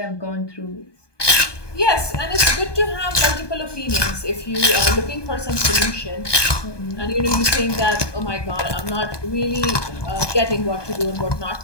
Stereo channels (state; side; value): late; right; 1.2 ms